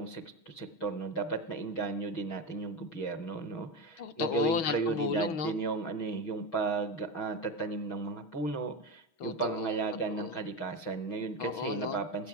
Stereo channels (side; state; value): right; late; 6.3 ms